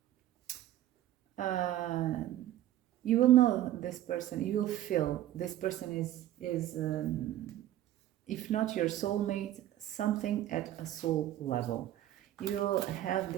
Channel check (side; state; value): left; quieter; 13.2 dB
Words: you will know this person, you will feel this person is if not your soulmate, something at a soul level. You will have